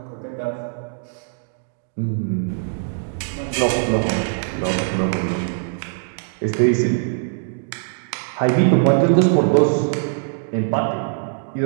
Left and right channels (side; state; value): left; silent; digital silence